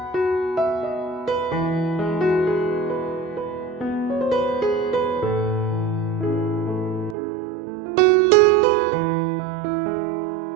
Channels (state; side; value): drops out; left; at 7.2 s